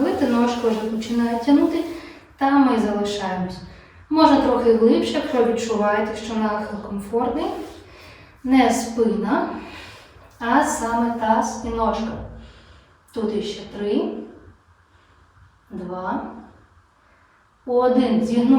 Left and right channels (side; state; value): both; identical; correlation 1.00